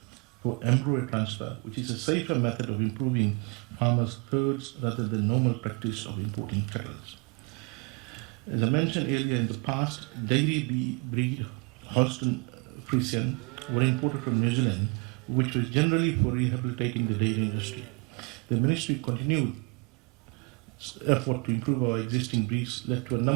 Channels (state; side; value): quieter; left; 32.4 dB